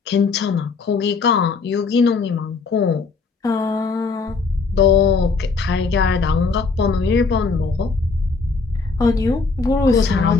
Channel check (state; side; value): quieter; right; 4.5 dB